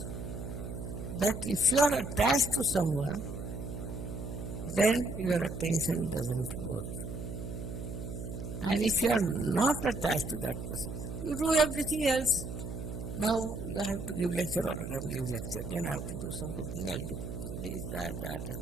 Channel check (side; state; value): right; noise; hum, 7 dB below the sound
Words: That if you are attached to someone, then your attention doesn't work. And if you are not attached to that person, you do everything else. Now you have to give lecture all the time, give lecture. Then I have to do some cooking, I'll do cooking. This, that, and